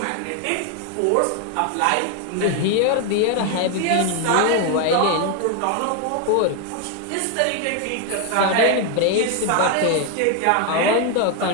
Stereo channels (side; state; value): both; different; correlation 0.01